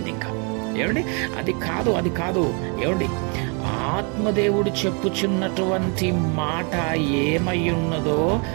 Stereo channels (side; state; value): left; quieter; 35.3 dB